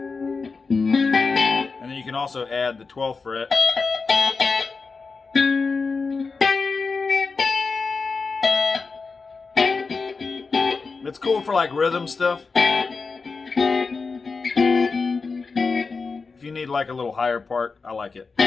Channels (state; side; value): quieter; right; 4.5 dB